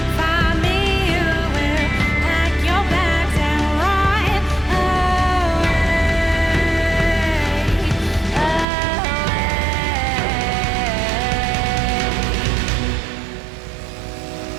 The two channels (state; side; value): drops out; left; at 8.7 s